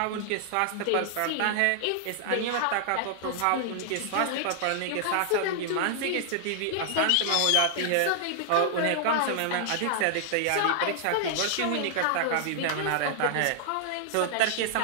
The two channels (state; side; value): different; both; correlation -0.01